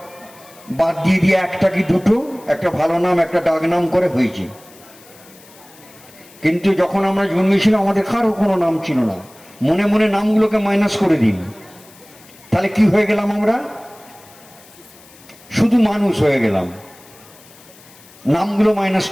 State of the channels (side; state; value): left; noise; hiss, 24 dB below the sound